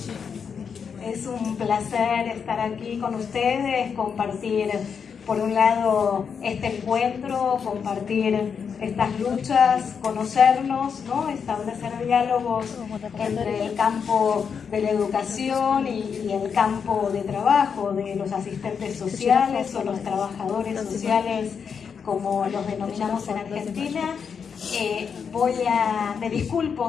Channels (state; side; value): quieter; right; 6.5 dB